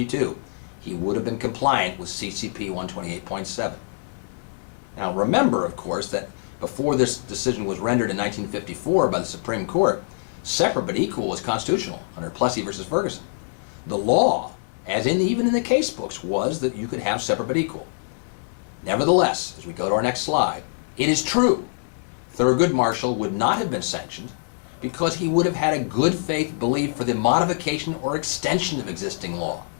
he would have been compliant with CCP 128.7. Now remember, of course, that before this decision was rendered in 1954 by the Supreme Court, separate but equal was constitutional under Plessy versus Ferguson. The law, even in the case books, was that you could have separate but equal. Nevertheless, as we go to our next slide, it is true Thurgood Marshall would not have been sanctioned because he would have had a good faith belief for the modification or extension of existing law.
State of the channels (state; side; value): silent; right; 62 dB below the other